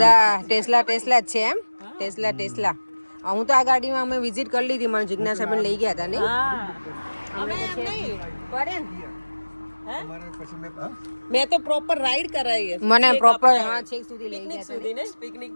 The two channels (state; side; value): inverted; both; correlation -1.00